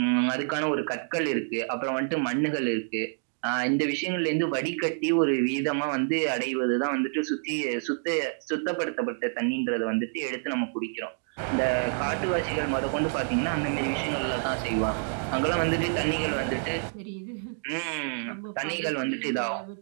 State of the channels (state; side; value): silent; left; digital silence